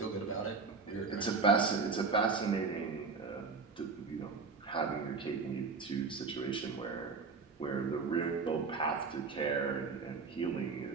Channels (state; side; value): quieter; left; 4.6 dB